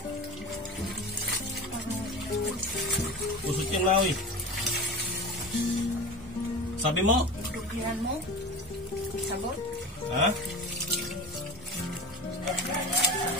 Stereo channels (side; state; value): both; normal; correlation 0.30